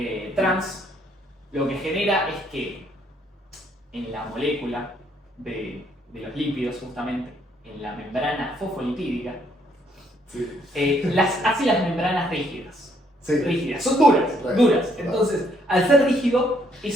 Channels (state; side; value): normal; both; correlation 0.69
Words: trans, lo que genera es que en la molécula de los lípidos, justamente, en la membrana fosfolipídica, Sí. hace las membranas rígidas. Sí. Rígidas, son duras, Right. duras. Entonces, al ser rígido,